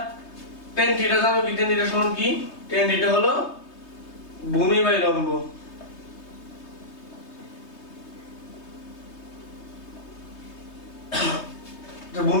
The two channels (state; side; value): late; right; 3.2 ms